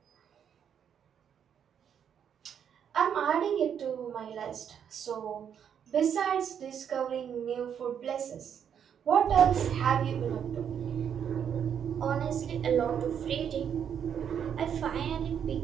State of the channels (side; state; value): left; quieter; 8.3 dB